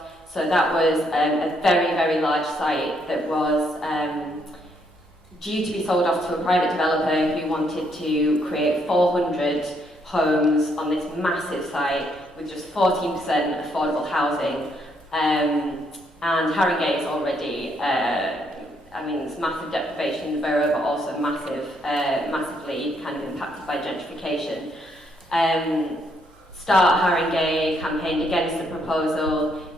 So that was a very, very large site that was due to be sold off to a private developer who wanted to create 400 homes on this massive site with just 14% affordable housing. And Haringey is already, it's massive deprivation in the borough, but also massively kind of impacted by gentrification. Start Haringey campaigned against the proposal.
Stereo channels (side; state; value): both; normal; correlation 0.73